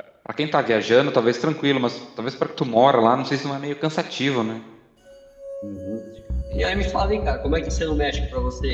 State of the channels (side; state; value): both; identical; correlation 1.00